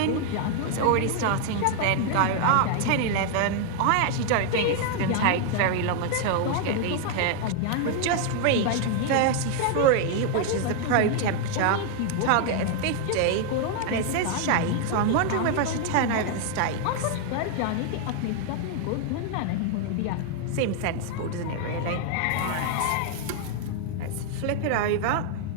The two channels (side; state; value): both; different; correlation 0.00